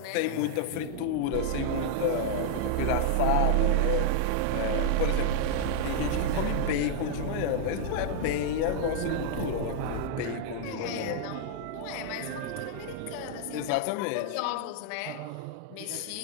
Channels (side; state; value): both; different; correlation -0.01